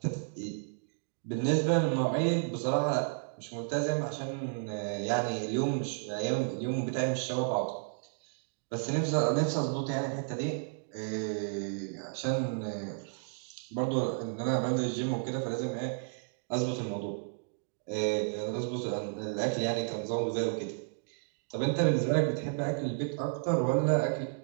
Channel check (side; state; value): left; silent; digital silence